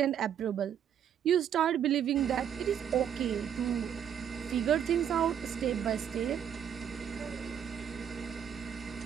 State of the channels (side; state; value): left; quieter; 8.9 dB